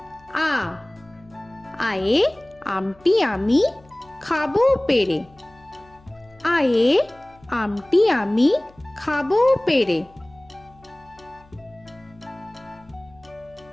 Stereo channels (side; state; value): left; noise; hum, 27 dB below the sound